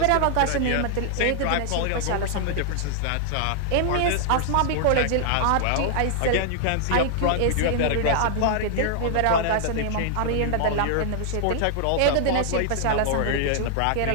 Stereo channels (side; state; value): both; different; correlation -0.01